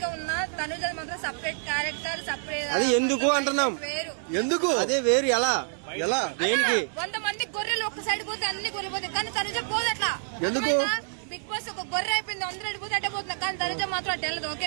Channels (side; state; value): left; silent; 58 dB below the other